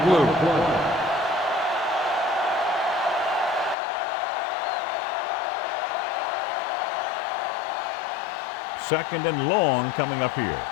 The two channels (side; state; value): right; drops out; at 3.8 s